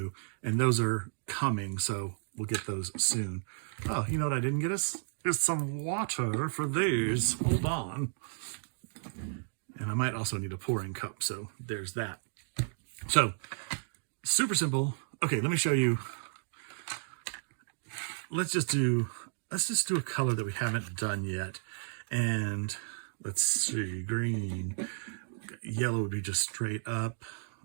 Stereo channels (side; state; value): left; silent; digital silence